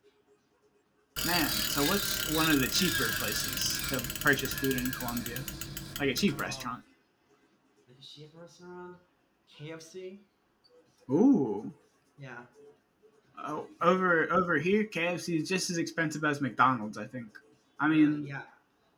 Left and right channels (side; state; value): both; identical; correlation 1.00